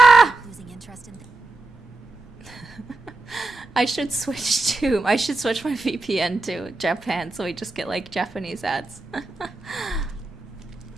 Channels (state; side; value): quieter; left; 3.2 dB